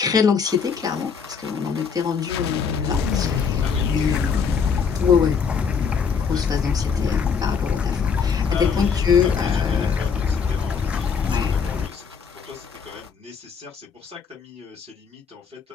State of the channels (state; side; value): quieter; right; 6.2 dB